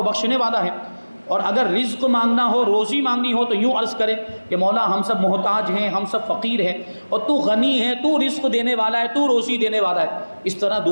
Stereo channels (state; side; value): inverted; both; correlation -1.00